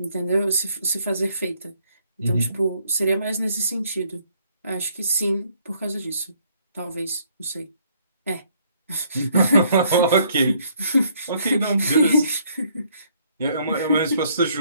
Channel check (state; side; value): inverted; both; correlation -0.66